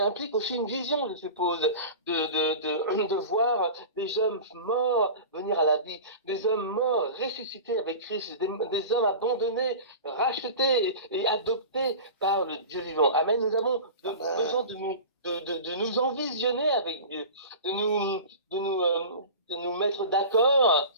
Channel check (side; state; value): both; inverted; correlation -0.34